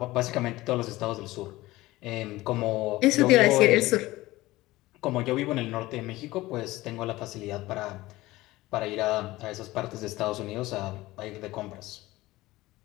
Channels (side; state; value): right; quieter; 18.4 dB